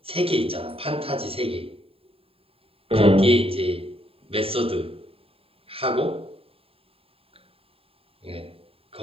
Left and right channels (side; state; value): left; late; 0.27 ms